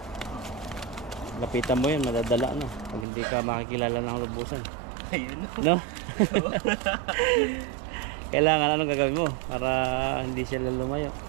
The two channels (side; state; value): left; drops out; at 3.1 s